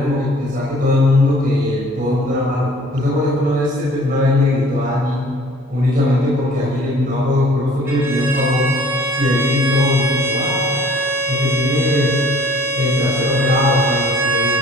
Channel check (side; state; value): both; normal; correlation 0.53